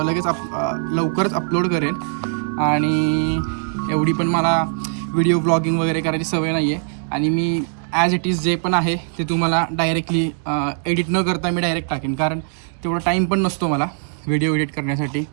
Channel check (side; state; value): left; silent; digital silence